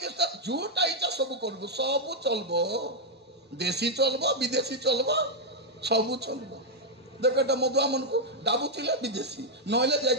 ଯୋଉଟା ଇଚ୍ଛା ସବୁ କରିବୁ, ସବୁ ଚଲବ, ଦେଶୀ ଚଲବ, ବିଦେଶୀ ଚଲବ, ସବୁ ଚଲବ। ଦେଖ ଏଟା ମଦୁଆ ମାନଙ୍କୁ ଡାବୁଥିଲେ ବିଦେଶୀ, ନହେଲେ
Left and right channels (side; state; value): both; normal; correlation -0.03